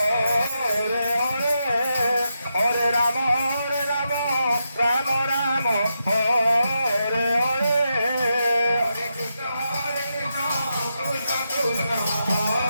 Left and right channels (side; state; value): both; inverted; correlation -0.85